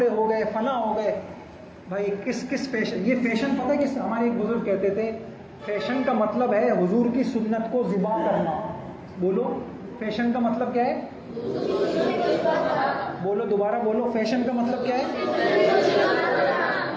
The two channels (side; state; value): both; identical; correlation 1.00